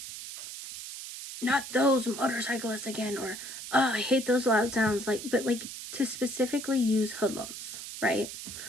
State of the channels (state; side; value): noise; right; hiss, 10 dB below the sound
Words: not those motorcyclists again, or, oh, I hate those loud sounds. Like, but like, to specifically use hoodlums, right?